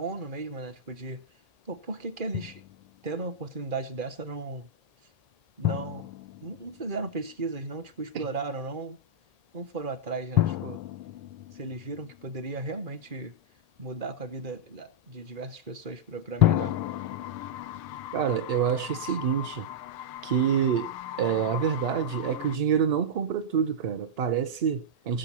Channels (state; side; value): late; left; 1.8 ms